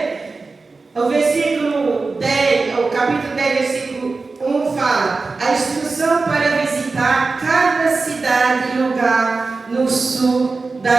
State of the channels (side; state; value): left; quieter; 3.9 dB